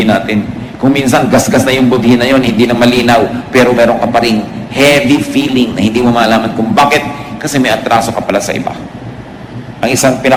natin. Kung minsan gasgas na yung budhi na yun, hindi na malinaw, pero meron ka pa ring heavy feeling na hindi mo malaman kung bakit, kasi may atraso ka pala sa iba. Ang isang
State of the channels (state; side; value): identical; both; correlation 1.00